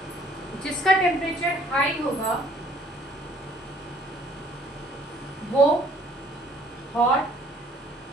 जिसका टेम्परेचर हाई होगा वो हॉट,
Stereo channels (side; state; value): both; normal; correlation 0.59